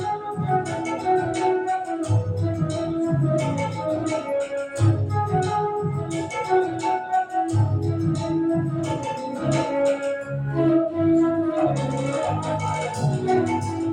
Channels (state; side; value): identical; both; correlation 1.00